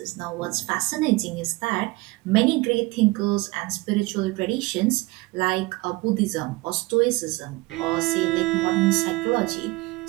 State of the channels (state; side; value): quieter; left; 22.3 dB